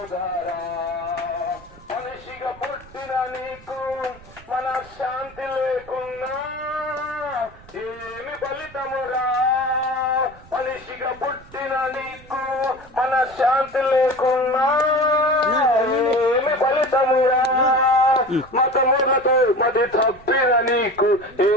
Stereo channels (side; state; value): right; noise; rumble, 22 dB below the sound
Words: మనిషిగా పుట్టిన నీకు మనశ్శాంతి లేకున్నా ఏమి ఫలితమురా, మనిషిగా పుట్టిన నీకు మనశ్శాంతి లేకున్నా ఏమి ఫలితమురా. మతములతో మతి తప్పిన నీకు